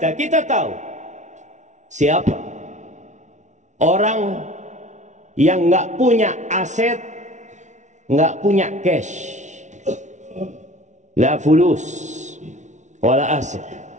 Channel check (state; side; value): late; left; 0.35 ms